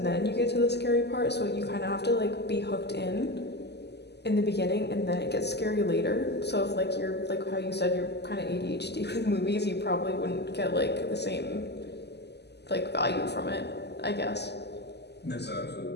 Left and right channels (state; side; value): late; right; 0.49 ms